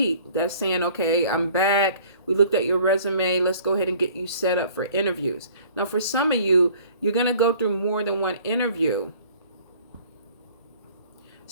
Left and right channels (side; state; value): both; inverted; correlation -0.53